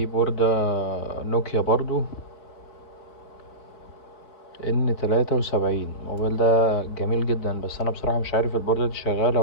بوردة نوكيا برضو N73. الموبايل ده جميل جدا، بس انا بصراحة مش عارف البوردة دي شغالة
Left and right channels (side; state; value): right; late; 4.3 ms